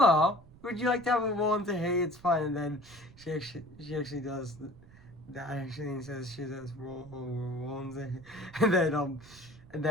would you like to have a bowl and say hey, it's fine, and then she actually does that actually and says she says roll and say and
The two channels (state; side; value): noise; right; rumble, 22 dB below the sound